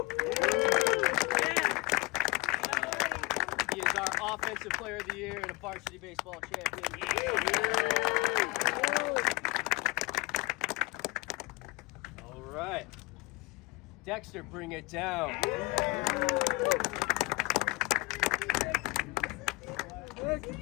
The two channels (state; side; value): quieter; right; 25.2 dB